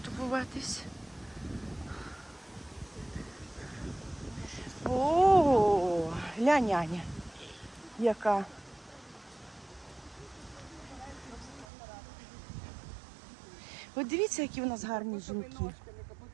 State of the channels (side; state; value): left; drops out; at 11.7 s